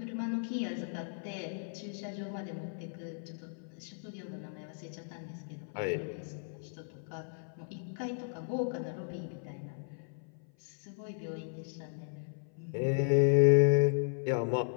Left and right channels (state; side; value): silent; right; 54 dB below the other